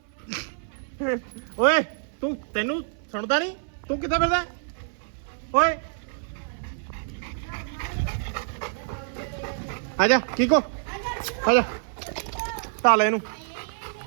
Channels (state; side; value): silent; left; 57 dB below the other